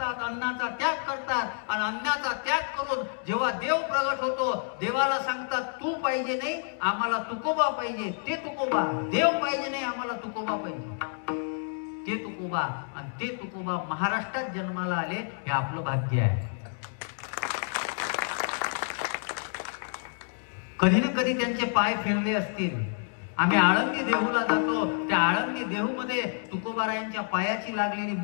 अन्नाचा त्याग करतात आणि अन्नाचा त्याग करून जेव्हा देव प्रगट होतो, देवाला सांगतात तू पाहिजे नाही आम्हाला तुकोबा पाहिजे. ते तुकोबा. देव पाहिजे नाही आम्हाला तुकोबा पाहिजे. ते तुकोबा. आणि ते तुकोबा महाराष्ट्रात जन्माला आले हे आपलं भाग्य आहे. कधी ना कधी त्यांचे पाय फिरले असतील. आम्ही आळंदी देहूला जातो, त्या आळंदी देहूमध्ये तुकोबारायांच्या पायाची लागलेली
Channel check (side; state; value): right; silent; digital silence